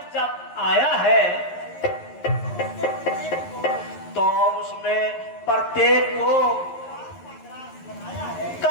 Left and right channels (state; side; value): late; right; 11 ms